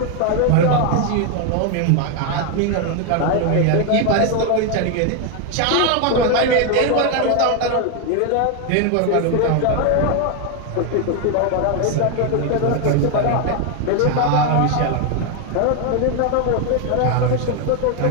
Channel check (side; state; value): both; different; correlation 0.01